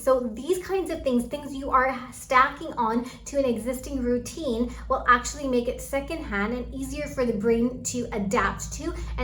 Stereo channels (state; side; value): identical; both; correlation 1.00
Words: these kinds of things you are stacking on to an existing routine will actually make it secondhand and easier for the brain to adapt to